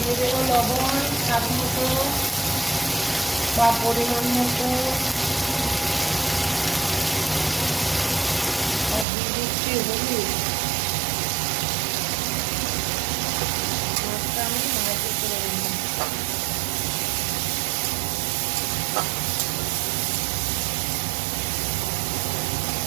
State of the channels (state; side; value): drops out; left; at 9.1 s